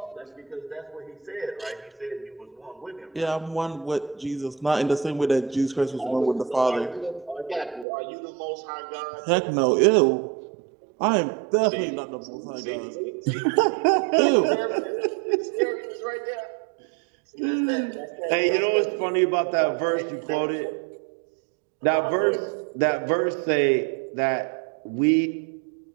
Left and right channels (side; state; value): left; drops out; at 7.9 s